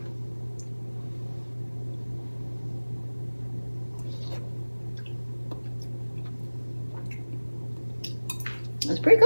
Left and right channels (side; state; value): both; inverted; correlation -1.00